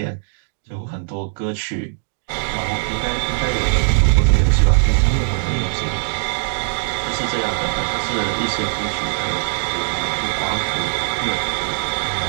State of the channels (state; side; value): silent; left; digital silence